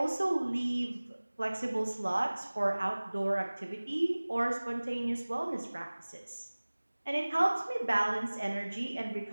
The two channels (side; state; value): both; inverted; correlation -1.00